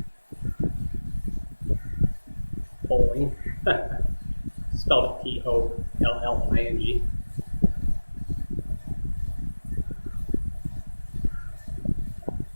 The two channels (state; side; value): inverted; both; correlation -1.00